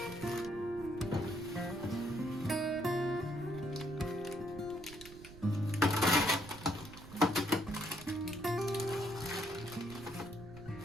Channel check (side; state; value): right; noise; rumble, 16 dB below the sound